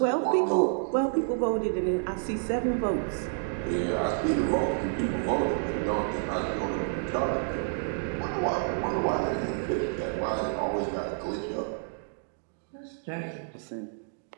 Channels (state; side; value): silent; left; digital silence